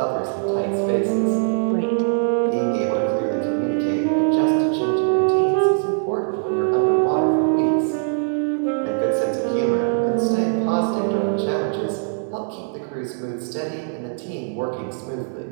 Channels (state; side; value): silent; left; digital silence